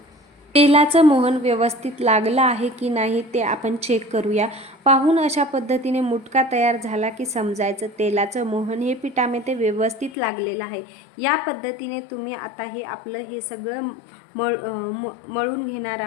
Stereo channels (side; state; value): right; drops out; at 10.2 s